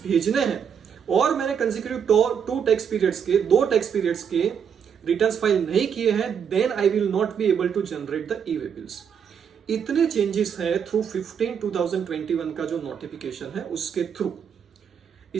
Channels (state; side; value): quieter; left; 7.5 dB